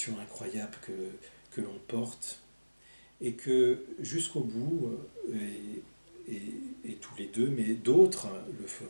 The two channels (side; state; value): both; inverted; correlation -1.00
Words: incroyable que l'on porte, et que jusqu'au bout, et tous les deux, mais d'autres le